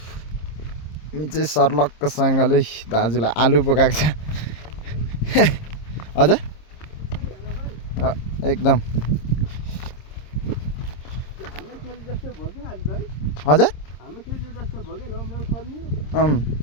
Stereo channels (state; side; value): late; right; 26 ms